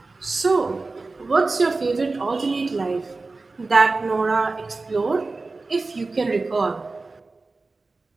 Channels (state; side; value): quieter; left; 3.6 dB